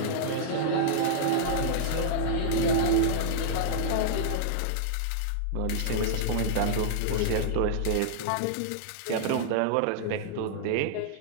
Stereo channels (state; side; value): different; both; correlation -0.02